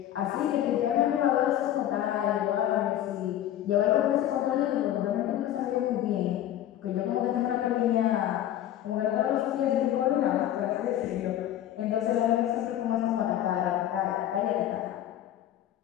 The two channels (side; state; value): right; quieter; 12.0 dB